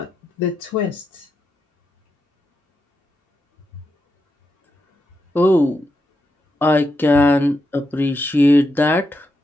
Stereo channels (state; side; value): normal; both; correlation 0.85